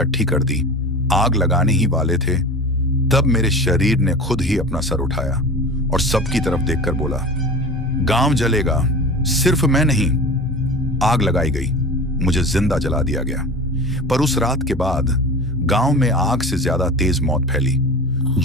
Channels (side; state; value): both; normal; correlation 0.33